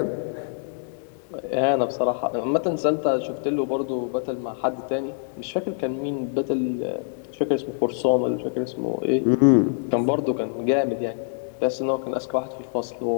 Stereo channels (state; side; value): silent; right; 57 dB below the other